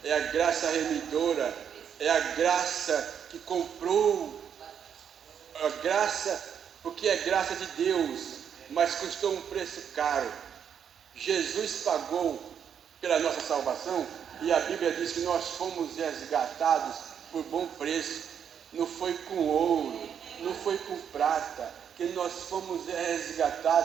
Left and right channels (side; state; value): left; quieter; 8.1 dB